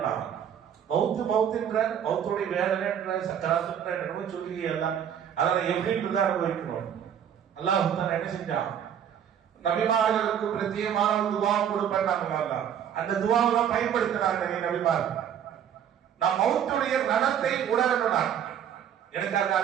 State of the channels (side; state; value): left; quieter; 9.0 dB